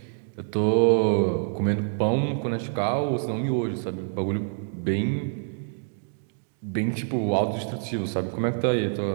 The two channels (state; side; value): silent; left; digital silence